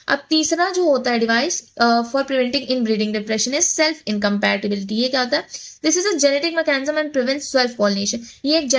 अब तीसरा जो होता है device for preventing inbreeding depression is self incompatibility. ये क्या होता है, this is a genetic mechanism and prevent self pollination. ये एक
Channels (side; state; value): both; identical; correlation 1.00